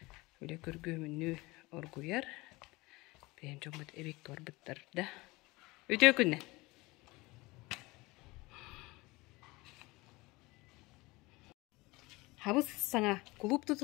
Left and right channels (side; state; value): right; quieter; 22.5 dB